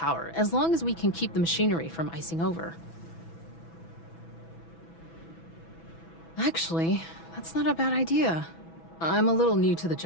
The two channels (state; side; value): late; right; 6.1 ms